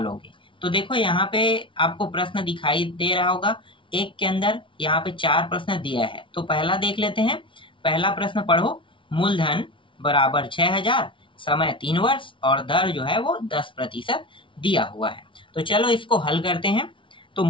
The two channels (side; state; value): right; late; 0.25 ms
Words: तो देखो यहाँ पे आपको प्रश्न दिखाई दे रहा होगा, एक के अंदर यहाँ पे 4 प्रश्न दिया है। तो पहला देख लेते हैं। पहला प्रश्न पढ़ो, मूलधन बराबर 6000, समय 3 वर्ष और दर जो है वो 10% दिया हुआ है। तो चलो इसको हल करते हैं। तो